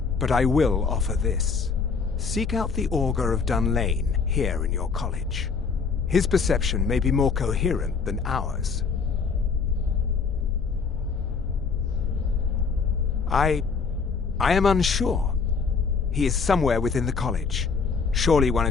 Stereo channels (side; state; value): right; quieter; 5.3 dB